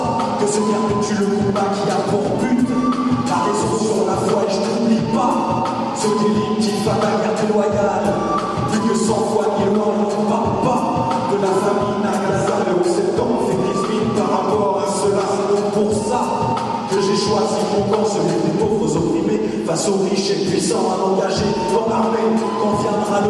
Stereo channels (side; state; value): both; identical; correlation 1.00